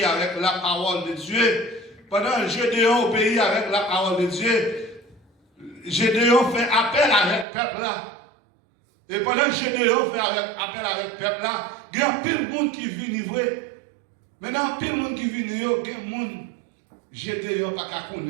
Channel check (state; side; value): drops out; left; at 7.5 s